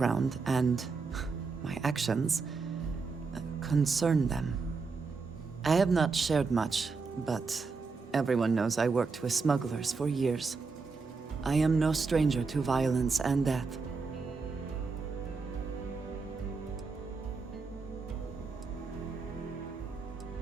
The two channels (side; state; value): left; quieter; 4.5 dB